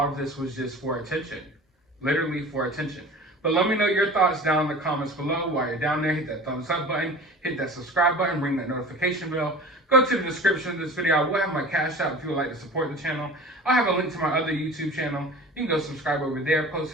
of this was just for attention. Literally for attention. But let me know your thoughts down in the comments below. While you're down there, hit that thumbs up button, hit that subscribe button, ring that notification bell. Go to the description of this video. I will have my Cash App if you would like to support the channel. I'll have a link to my other YouTube channel. You can go subscribe over there,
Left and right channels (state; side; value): normal; both; correlation 0.39